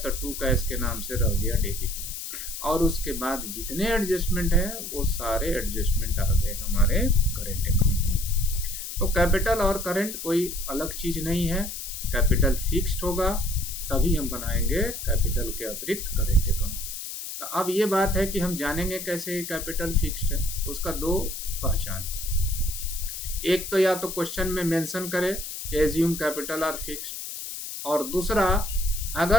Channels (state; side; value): noise; left; hiss, 7 dB below the sound